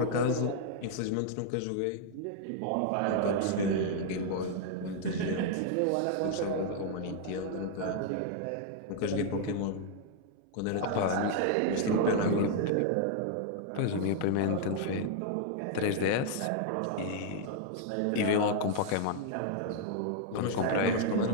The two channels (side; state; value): both; different; correlation 0.00